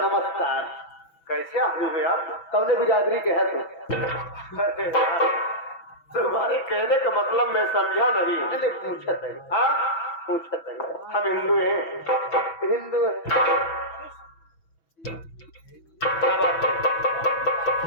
नमस्कार। कैसे आदमी हुए आप? कौने बिरादरी के है तुम? तुम्हारे कहने का मतलब मैं समझा नहीं। मैंने पूछा था। हाँ पूछा था। हम हिंदू हैं। हिंदू है। क्या बात है?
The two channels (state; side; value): late; right; 6.1 ms